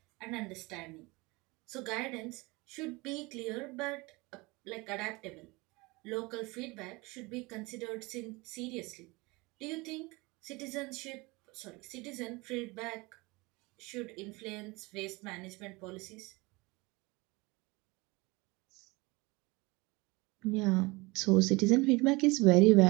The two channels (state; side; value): quieter; left; 24.4 dB